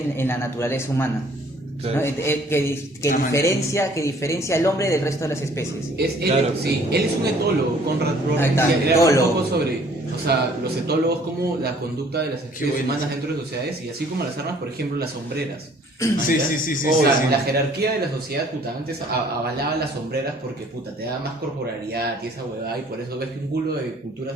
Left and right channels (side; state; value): both; normal; correlation 0.57